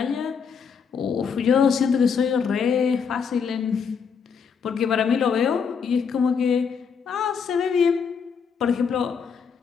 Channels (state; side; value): quieter; right; 6.3 dB